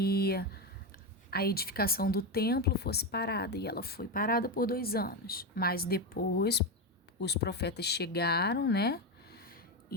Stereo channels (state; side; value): normal; both; correlation 0.12